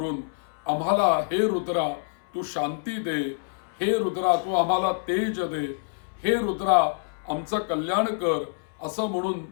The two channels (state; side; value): silent; right; 59 dB below the other